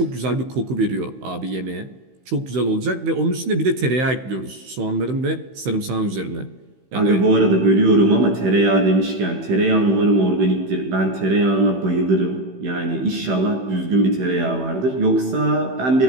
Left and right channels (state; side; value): late; left; 16 ms